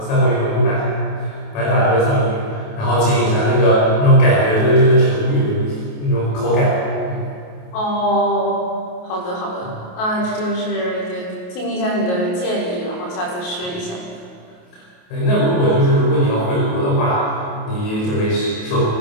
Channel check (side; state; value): right; late; 28 ms